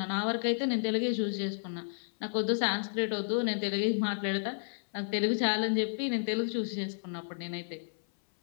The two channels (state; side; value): silent; right; 57 dB below the other